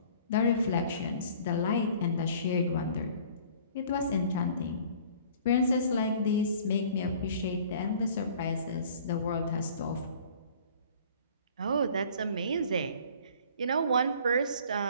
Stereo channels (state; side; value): inverted; both; correlation -0.50